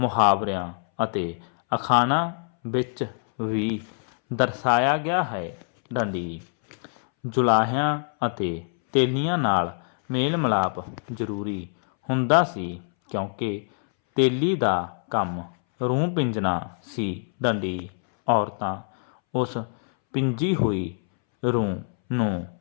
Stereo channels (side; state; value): right; silent; 62 dB below the other